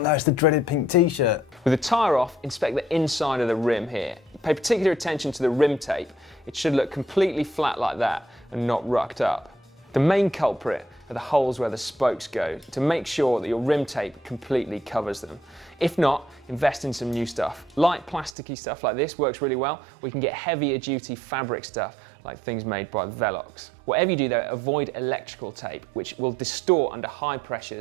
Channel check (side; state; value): left; drops out; at 18.3 s